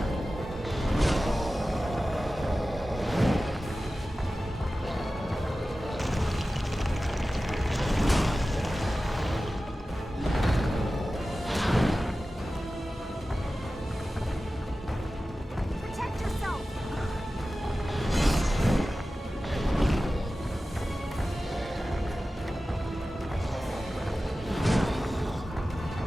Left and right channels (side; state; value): both; normal; correlation 0.95